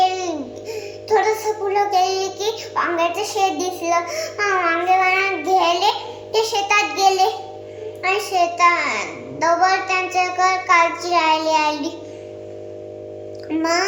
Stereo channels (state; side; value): identical; both; correlation 1.00